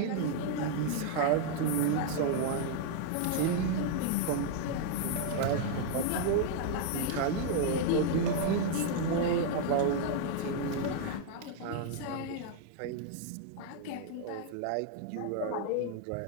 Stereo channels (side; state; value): both; different; correlation 0.00